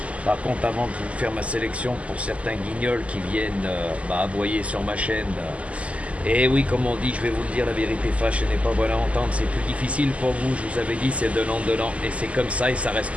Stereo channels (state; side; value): late; left; 0.065 ms